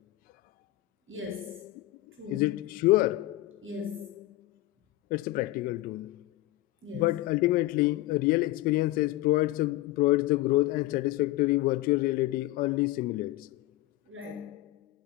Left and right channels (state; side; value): quieter; right; 17.1 dB